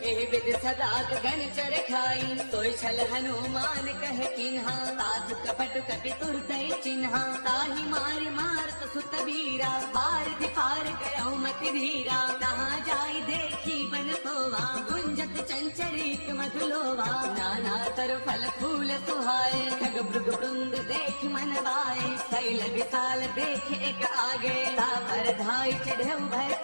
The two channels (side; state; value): both; inverted; correlation -1.00